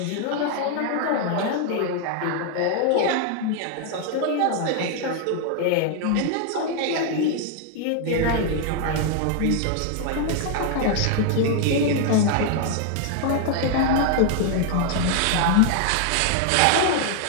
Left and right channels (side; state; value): both; different; correlation 0.00